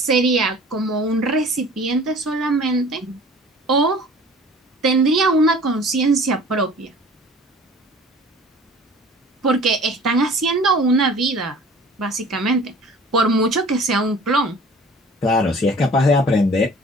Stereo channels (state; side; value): normal; both; correlation 0.47